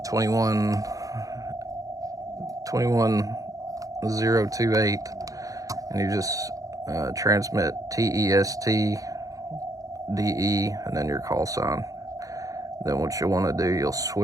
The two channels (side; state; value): left; late; 0.17 ms